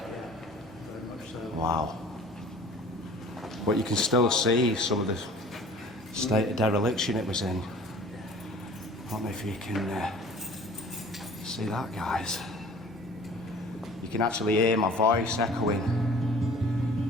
Very much so. Wow. But you can still see some of the state of dereliction it was in. I don't know if you can see that, guys. You can actually hear my voice echoing.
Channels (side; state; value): both; normal; correlation 0.47